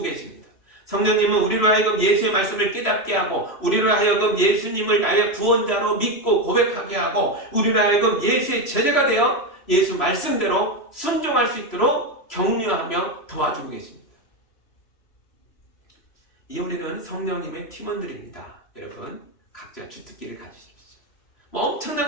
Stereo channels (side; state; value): right; late; 3.0 ms